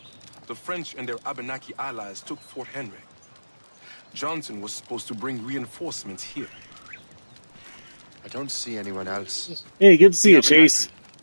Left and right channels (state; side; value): inverted; both; correlation -1.00